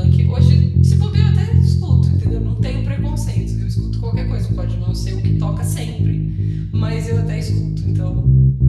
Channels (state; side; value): identical; both; correlation 1.00